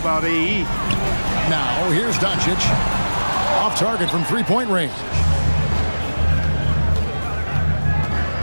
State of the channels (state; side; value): inverted; both; correlation -1.00